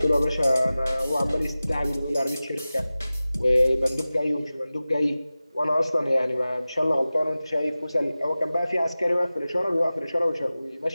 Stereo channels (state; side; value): inverted; both; correlation -0.96